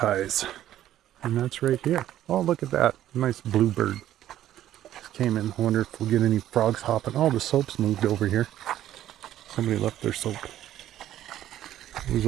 And that's right here. Oh, look at that. Nice bluebird. Came in. I wonder if we'll get any frogs hopping. Oh, the soap's moved over here. Somebody left their soap. It was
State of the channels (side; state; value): left; quieter; 12.4 dB